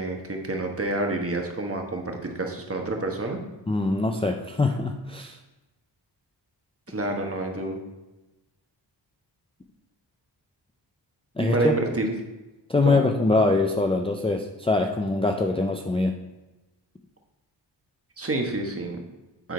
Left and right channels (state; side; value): normal; both; correlation 0.55